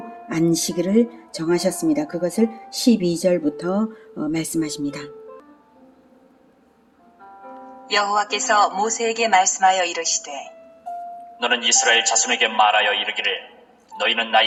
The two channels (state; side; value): identical; both; correlation 1.00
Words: 안식일을 정하셨습니다. 그것을 12절부터 말씀하십니다. 여호와께서 모세에게 말씀하여 이르시되 너는 이스라엘 자손에게 말하여 이르기를 너희는